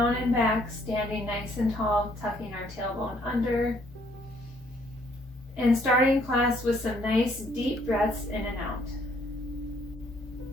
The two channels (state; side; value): normal; both; correlation 0.65